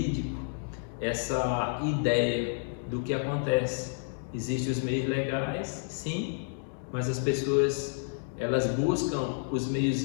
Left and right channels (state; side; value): silent; right; digital silence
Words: essa ideia do que acontece. Existem os meios legais, sim, mas as pessoas, elas buscam os meios